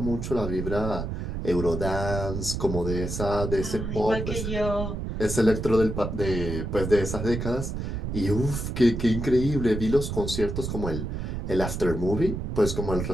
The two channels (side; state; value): right; noise; rumble, 4 dB below the sound